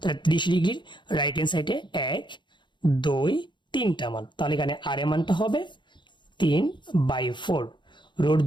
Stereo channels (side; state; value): right; late; 0.23 ms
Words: 30 ডিগ্রির রাইট হ্যান্ড সাইডে 1 2 3টা মান, তাহলে এখানে r এর মানটা হবে 3/4। রুট